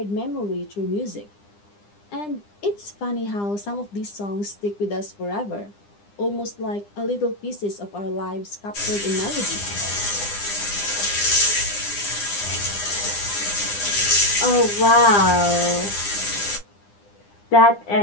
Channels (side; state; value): right; late; 9.9 ms